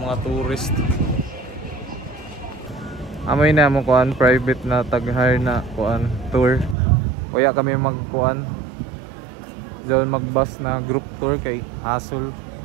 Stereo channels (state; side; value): drops out; left; at 6.8 s